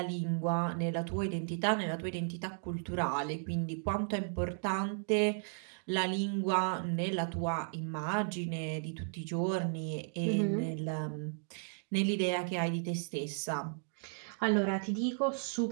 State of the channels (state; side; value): silent; left; digital silence